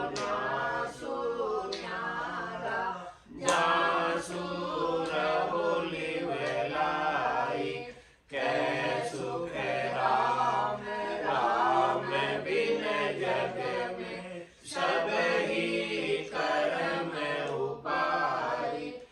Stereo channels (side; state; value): both; identical; correlation 1.00